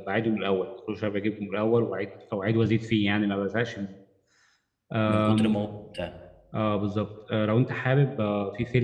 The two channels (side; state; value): both; identical; correlation 1.00